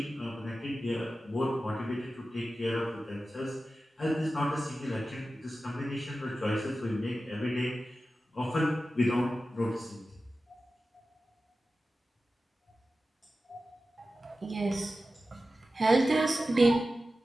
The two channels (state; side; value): normal; both; correlation 0.94